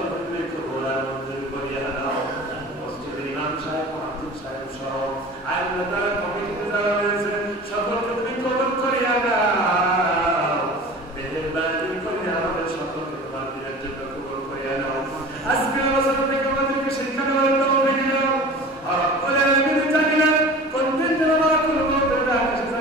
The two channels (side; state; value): both; normal; correlation 0.39